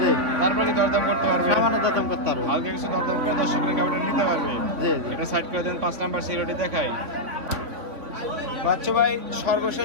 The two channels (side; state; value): left; late; 3.7 ms